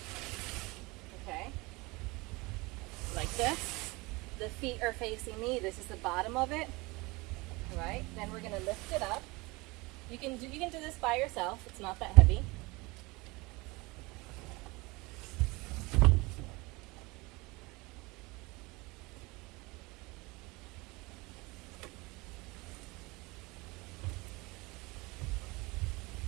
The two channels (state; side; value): quieter; left; 24.1 dB